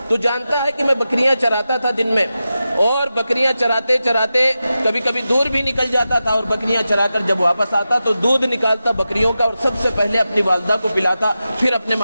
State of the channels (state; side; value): inverted; both; correlation -0.92